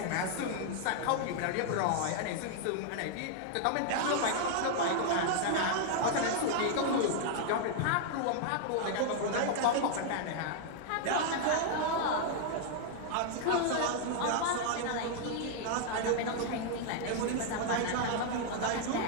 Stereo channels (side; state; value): both; different; correlation 0.00